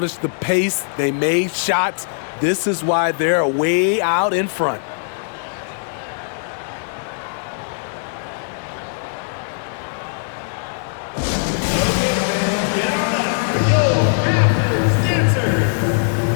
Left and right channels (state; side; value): silent; right; digital silence